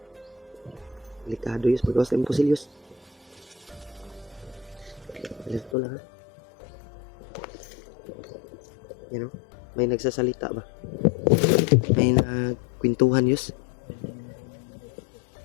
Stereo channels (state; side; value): drops out; right; at 5.8 s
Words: Delikado Yus, magawas na imposible Yus. Alerto lang ha. Yan o, may nagsasalita ba? May nagkwentuhan Yus.